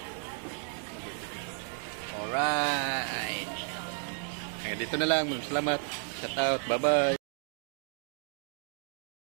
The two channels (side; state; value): left; silent; 56 dB below the other